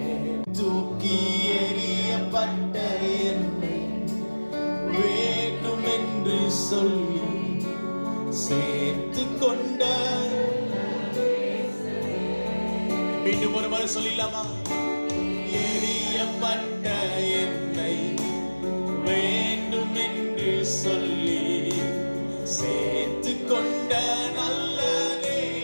தூக்கி எறியப்பட்ட என்னை வேண்டும் என்று சொல்லி சேர்த்து கொண்ட. மீண்டும் ஒரு முறை சொல்லிடலாமா? எறியப்பட்ட என்னை வேண்டும் என்று சொல்லி சேர்த்து கொண்ட நல்ல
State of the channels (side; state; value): both; inverted; correlation -1.00